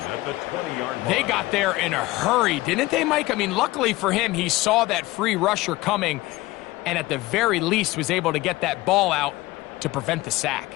They got there in a hurry, didn't they, Mike? I mean, luckily for him, he saw that free rusher coming and at the very least was able to get that ball out to prevent the sack.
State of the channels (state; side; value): quieter; right; 19.4 dB